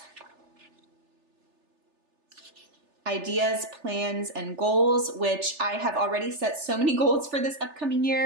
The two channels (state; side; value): late; left; 3.4 ms